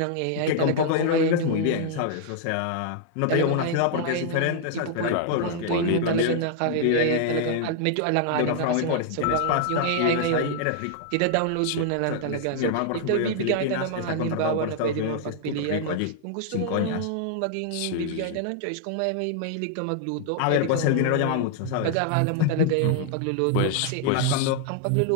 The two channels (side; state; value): both; different; correlation -0.01